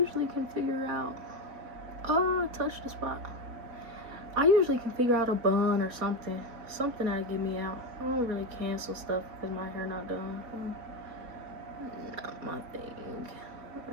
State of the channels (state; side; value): late; left; 4.3 ms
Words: can figure out. Touch the spot. I usually can figure out a bun or something that'll get me out. I don't really cancel stuff because my hair not done. Not my thing. I don't